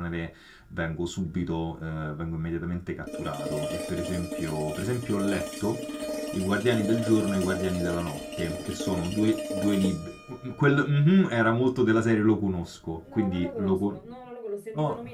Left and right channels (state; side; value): identical; both; correlation 1.00